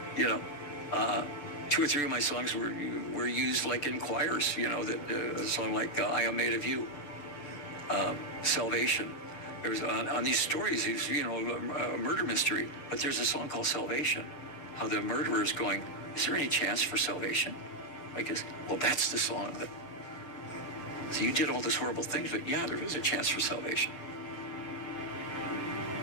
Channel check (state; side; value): late; right; 6.8 ms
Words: 2 or 3 of my songs were used like in choirs, a song like I Am Made of You, Salvation. There's on these stories, a murder mystery, but there's a song called Salvation, how the murderer is going, is there any chance for salvation? Well, that's the song that So you did all these horrible things, but yeah, there is a chance for salvation.